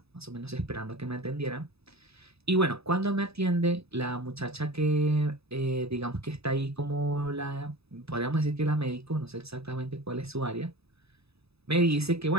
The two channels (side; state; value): left; late; 0.78 ms